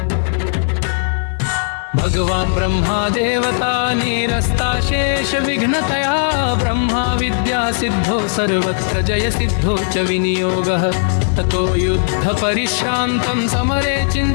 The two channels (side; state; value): right; silent; 58 dB below the other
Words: भगवान् ब्रह्मा देवता निरस्ताशेष विघ्नतया ब्रह्मा विद्या सिद्धो सर्वत्र जय सिद्धो च विनियोगः ततो युद्ध परिश्रान्तं समरे